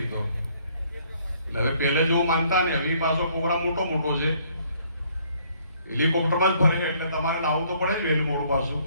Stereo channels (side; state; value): both; inverted; correlation -0.64